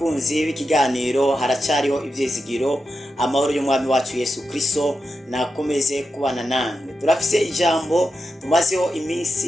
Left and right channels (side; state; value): both; normal; correlation 0.88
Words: b'ikiganiro haracyariho ivyizigiro. Amahoro y'umwami wacu Yesu Kristo nakomeze kubana namwe. Turafise ijambo tumazeho